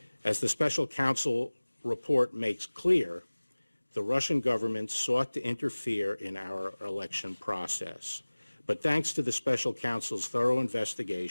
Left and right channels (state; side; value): inverted; both; correlation -1.00